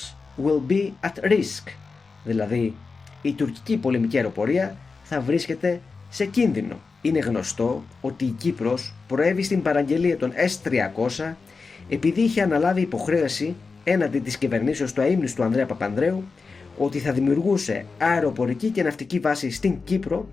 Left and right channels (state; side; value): quieter; right; 4.5 dB